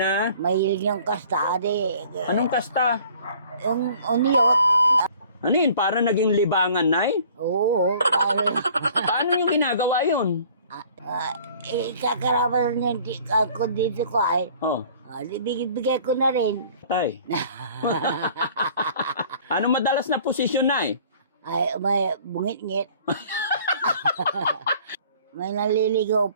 Mahilig yung kasta. Anong kasta? Yung uniyot. Ano yun? Para naging libangan, Nay? Oo. Paano yung ginagawa yun? Kakarapan niya ako dito ko ay. Oh, Bigay ko na rin. tay. Ano madalas na posisyon, Nay? Ay, may bungit-ngit. May naliligaw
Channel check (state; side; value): inverted; both; correlation -0.52